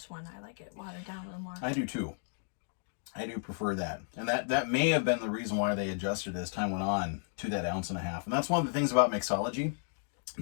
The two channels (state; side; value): silent; right; 56 dB below the other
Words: one. I like it watered down a little more. I do too. I do prefer that. And that may have been the reason why they adjusted as time went on to that 1.5 ounces. And that's one of the things about mixology.